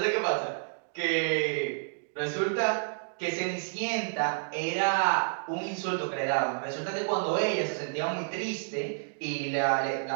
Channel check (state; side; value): silent; left; digital silence